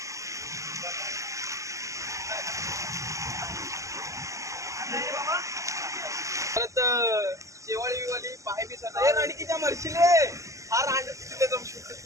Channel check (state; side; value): late; left; 0.16 ms